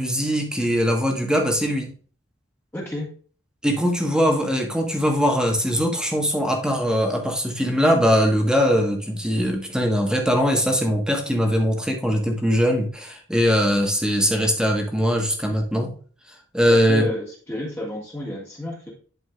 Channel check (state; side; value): normal; both; correlation 0.73